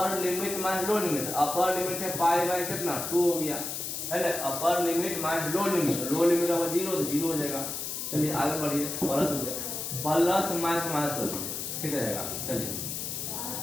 limit minus lower limit. Upper limit है π/, कितना 2 हो गया है ना, upper limit minus lower limit. Lower limit का 0 तो 0 हो जाएगा। चलिए आगे बढ़िए, प्लस हो गया, प्लस माइनस कर दीजिए, ठीक रहेगा। चलिए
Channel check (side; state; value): left; noise; hiss, 4 dB below the sound